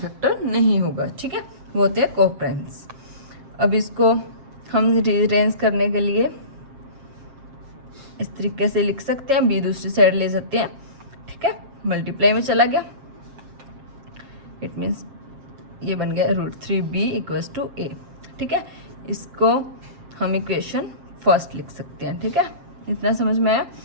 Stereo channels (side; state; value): left; late; 7.5 ms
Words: नहीं होगा, ठीक है। वो होते हैं को प्राइम्स। अब इसको हम रीअरेंज करने के लिए इस तरीके से लिख सकते हैं, b दूसरी साइड ले सकते हैं, ठीक है। मल्टीप्लाई में चला गया, इट मीन्स ये बन गया √3b = a, ठीक है। इसको हम इक्वेशन फर्स्ट लिख सकते हैं, ठीक है। इतना समझ में आया।